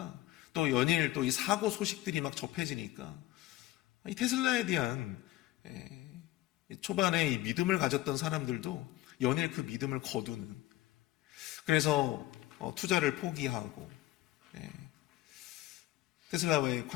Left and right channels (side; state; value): right; quieter; 16.4 dB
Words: 또 연일 또 이 사고 소식들이 막 접해지니까 이 테슬라에 대한 초반에 이 믿음을 가졌던 사람들도 연일 그 믿음을 거두는, 그래서 투자를 포기하고 테슬라와의